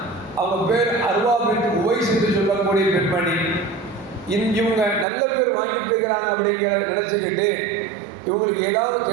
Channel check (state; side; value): drops out; left; at 5.1 s